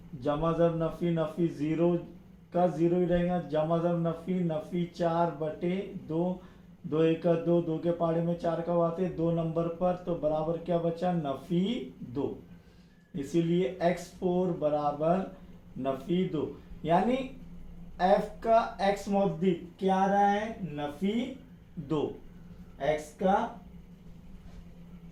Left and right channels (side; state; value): both; identical; correlation 1.00